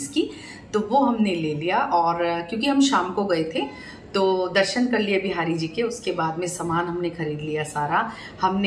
की, तो वो हमने ले लिया। और क्योंकि हम शाम को गए थे तो दर्शन कर लिए बिहारी जी के, उसके बाद में सामान हमने खरीद लिया सारा।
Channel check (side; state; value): both; identical; correlation 1.00